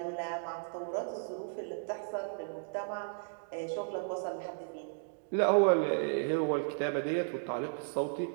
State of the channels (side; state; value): left; silent; digital silence